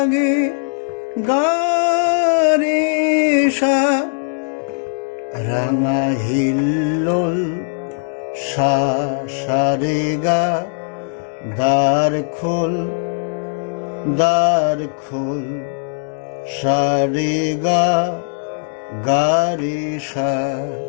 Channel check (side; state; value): right; silent; digital silence